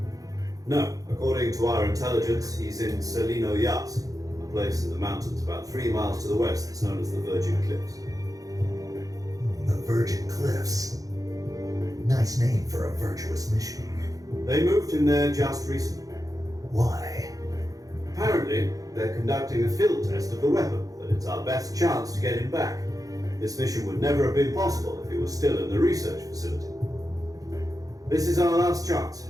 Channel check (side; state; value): left; late; 0.17 ms